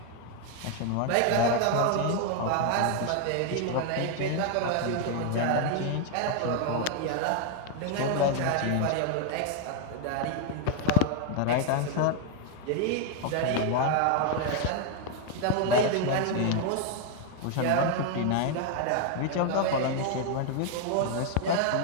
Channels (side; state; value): both; different; correlation 0.01